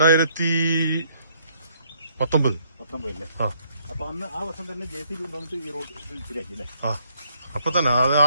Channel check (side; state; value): both; inverted; correlation -0.68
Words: അപ്പൊ അന്ന് ആ വർഷം തന്നെ JCB കൊണ്ടുവന്നിട്ട് ഈ റോഡ് ശരിയാക്കി അല്ലേ? അപ്പൊ തന്നെ ആ